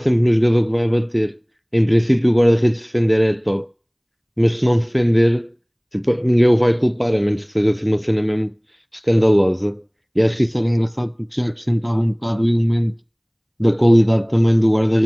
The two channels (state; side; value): identical; both; correlation 1.00